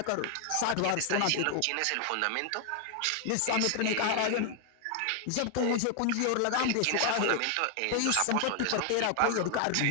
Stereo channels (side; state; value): both; different; correlation 0.00